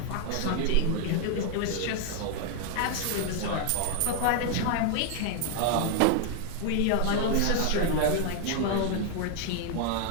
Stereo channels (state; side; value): different; both; correlation 0.00